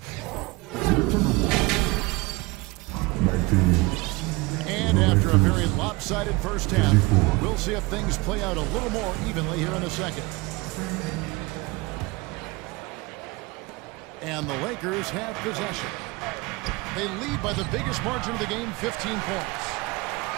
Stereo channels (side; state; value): left; quieter; 23.5 dB